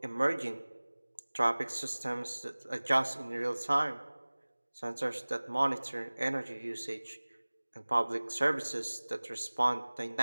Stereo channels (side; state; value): both; inverted; correlation -1.00